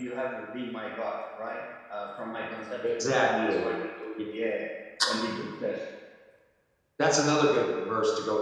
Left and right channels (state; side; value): identical; both; correlation 1.00